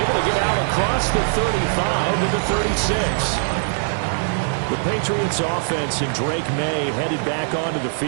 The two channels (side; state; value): left; silent; digital silence